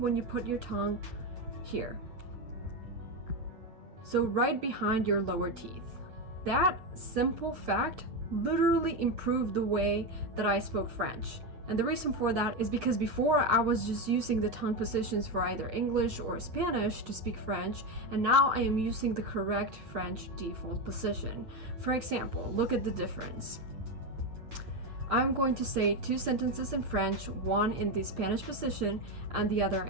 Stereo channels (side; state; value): left; late; 8.2 ms